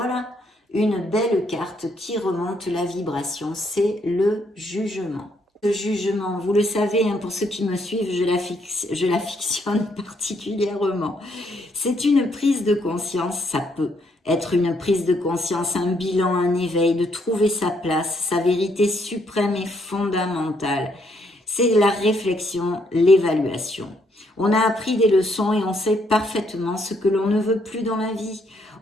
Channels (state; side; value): normal; both; correlation 0.72